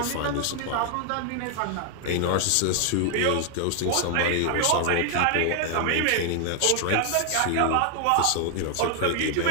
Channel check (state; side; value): different; both; correlation 0.00